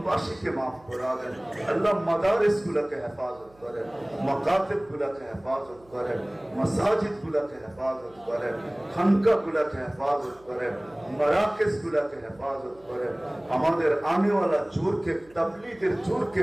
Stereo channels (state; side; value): noise; right; hum, 27 dB below the sound